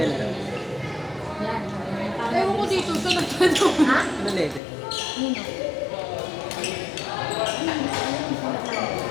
daw? Ewan ko dito, sa nagtanong. Ha? Anong level?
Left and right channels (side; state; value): right; drops out; at 4.6 s